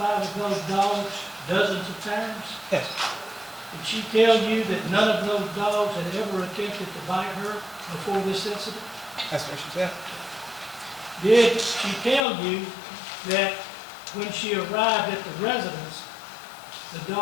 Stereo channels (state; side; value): drops out; right; at 12.2 s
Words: of those dogs dozens of times? Yes. Did she tell you that none of those dogs had ever attempted to bite her before this incident? That's what she said. Did she tell you that when she arrived at the residence, the